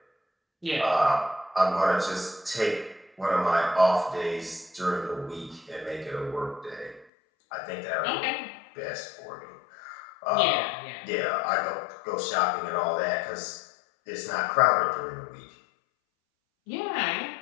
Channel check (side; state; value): right; drops out; at 7.1 s